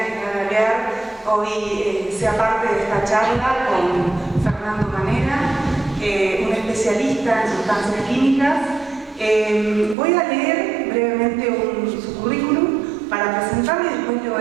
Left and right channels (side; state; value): left; drops out; at 10.0 s